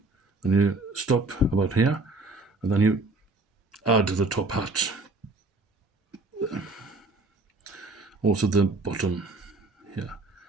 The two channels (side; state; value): left; quieter; 3.2 dB